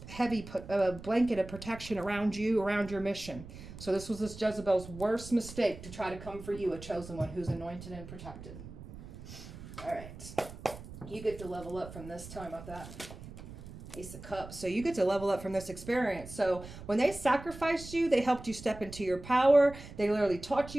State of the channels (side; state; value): right; noise; rumble, 14 dB below the sound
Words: heavy blanket of protection around you, around your mission. So this was this Jezebel's worst mistake, to try to come for you, a chosen one who's anointed and protected. All right. You get to level up from this time with that Ace of Cups. So you get to level up from this experience. So when they sacrificed you, they helped you step into your power. They literally taught